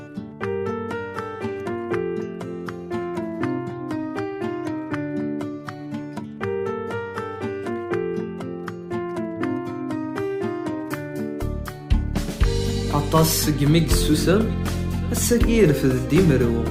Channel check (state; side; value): identical; both; correlation 1.00